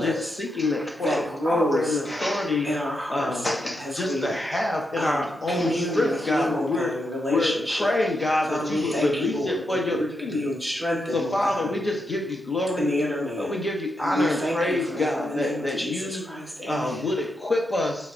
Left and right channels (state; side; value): normal; both; correlation 0.84